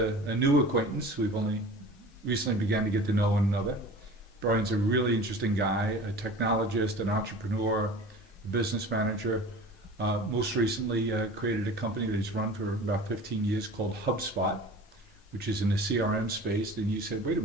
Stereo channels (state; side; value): normal; both; correlation 0.40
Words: new acquaintance. We've only recently began to get to know one another. Brian's a really interesting guy, a technologist, an entrepreneur, a business manager. Most recently created a company that he's run for about 15 years called HubSpot, which is in the CRM space. Then you said, wait a